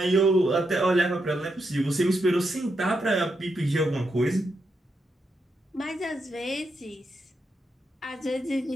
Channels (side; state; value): both; normal; correlation 0.83